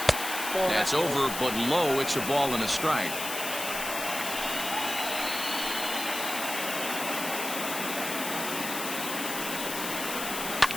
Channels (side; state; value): left; noise; hiss, 5 dB below the sound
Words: That's over, but low. It's a ball and a strike.